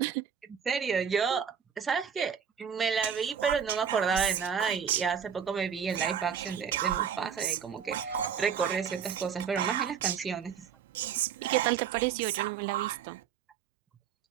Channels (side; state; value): left; quieter; 7.6 dB